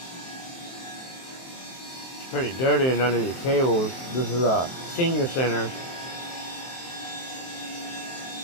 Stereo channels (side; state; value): right; late; 23 ms